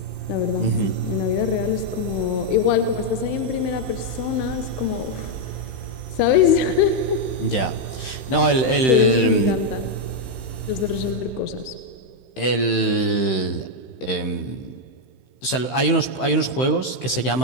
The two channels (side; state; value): right; late; 16 ms